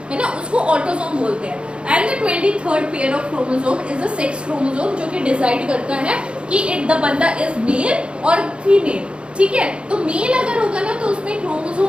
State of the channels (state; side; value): late; left; 0.057 ms